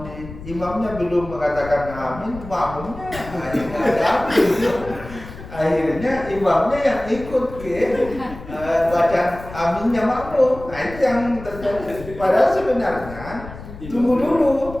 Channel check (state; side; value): noise; left; rumble, 14 dB below the sound